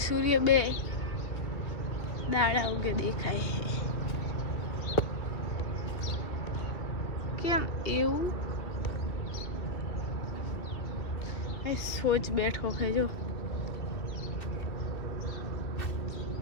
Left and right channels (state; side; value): late; right; 2.7 ms